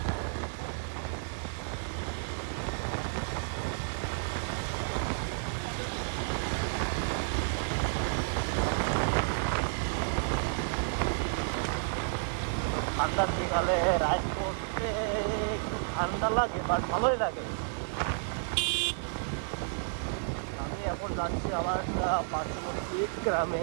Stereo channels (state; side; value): silent; left; 57 dB below the other